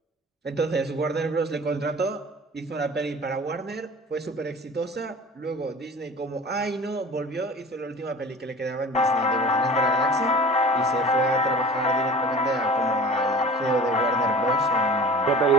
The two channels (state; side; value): normal; both; correlation 0.41